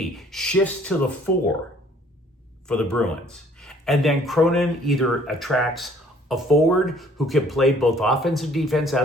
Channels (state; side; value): normal; both; correlation 0.58